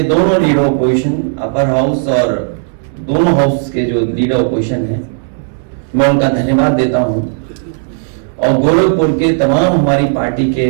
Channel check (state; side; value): silent; left; digital silence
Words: दोनों लीडर ऑपोजिशन, अपर हाउस और दोनों हाउस के जो लीडर ऑपोजिशन हैं, मैं उनका धन्यवाद देता हूं। और गोरखपुर के तमाम हमारी पार्टी